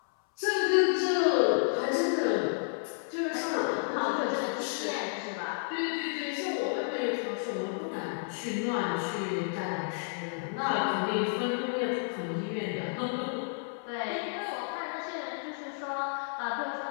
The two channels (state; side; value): silent; right; 57 dB below the other